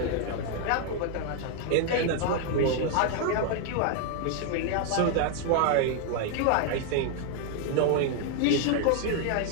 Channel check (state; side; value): different; both; correlation 0.00